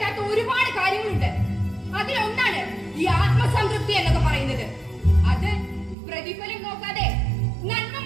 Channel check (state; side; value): drops out; left; at 6.0 s